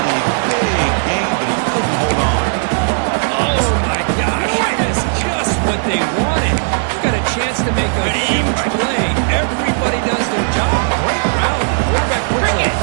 a big game, but he couldn't hold on. Oh, my gosh. That is just what they wanted. You've got a chance to make a huge play. Everybody does their job. Great route. Quarterback puts it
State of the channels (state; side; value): silent; left; digital silence